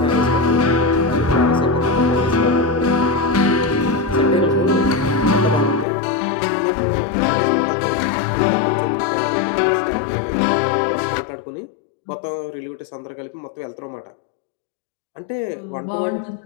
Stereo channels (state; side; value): drops out; right; at 5.9 s